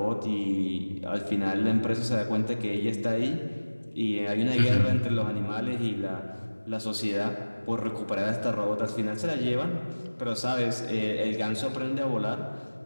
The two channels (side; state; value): both; inverted; correlation -1.00